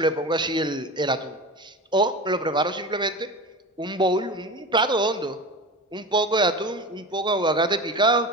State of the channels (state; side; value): normal; both; correlation 0.29